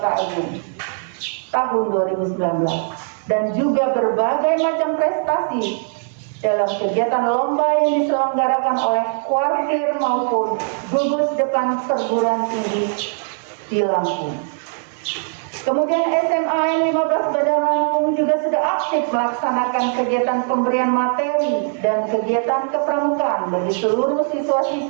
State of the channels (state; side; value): silent; left; 63 dB below the other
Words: Agung tahun 2019, dan juga berbagai macam prestasi dalam kegiatan lomba yang diselenggarakan oleh kuartir maupun gugus depan perguruan tinggi di Lampung. Kemudian SMA N 15 Bandar Lampung juga sudah aktif melaksanakan kegiatan pemberian materi dan kegiatan kepramukaan bagi seluruh